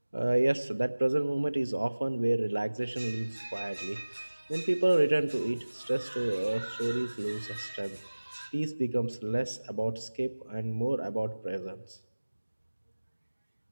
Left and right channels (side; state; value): both; inverted; correlation -1.00